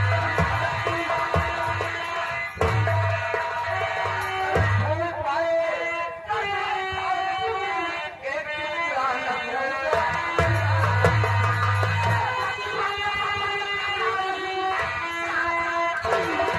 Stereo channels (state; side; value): identical; both; correlation 1.00